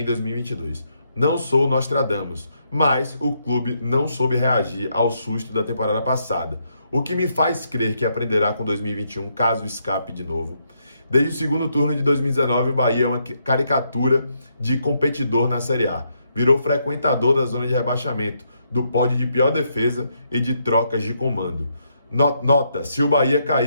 2022. Não sou Nostradamus, mas o clube não soube reagir ao susto da temporada passada, o que me faz crer que aprenderá com 2021 caso escape de novo. Desde o segundo turno de 2019, o Bahia é uma caricatura de competidor na Série A. Virou frequentador da zona de rebaixamento, do pódio de pior defesa e de trocas de comando. Nota, se o Bahia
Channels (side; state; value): both; inverted; correlation -0.77